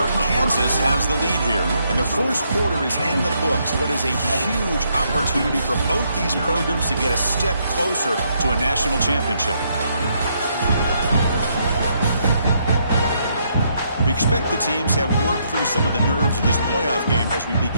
Kansas has the lead here, and the first quarter is in the books. What is a huge opportunity for both these programs to get a step closer to a national championship. expect the teams have worked through some of the nerves of this playoff game as we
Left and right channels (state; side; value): inverted; both; correlation -0.74